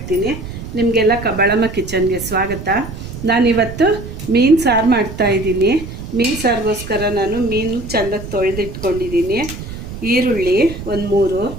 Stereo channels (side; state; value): right; noise; rumble, 10 dB below the sound